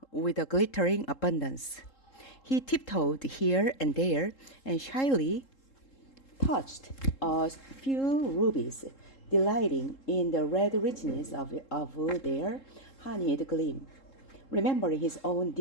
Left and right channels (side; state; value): right; late; 3.7 ms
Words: with a glittering abundance. He tiptoed here and there and shyly touched a few rubies, delighting in the red richness of their honeyed gleam, remembering his own